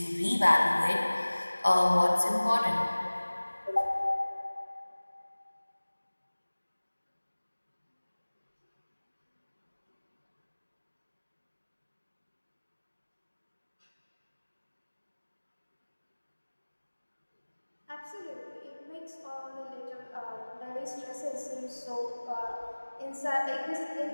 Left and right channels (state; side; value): inverted; both; correlation -1.00